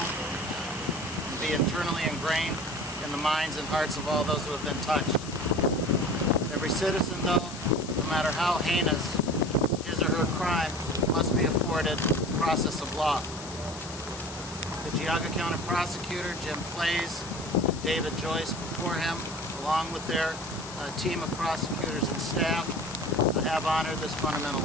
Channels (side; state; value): left; noise; hiss, 13 dB below the sound